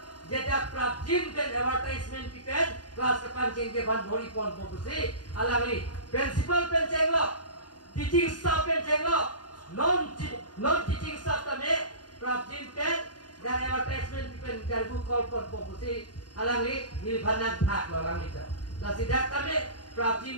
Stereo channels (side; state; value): right; late; 0.70 ms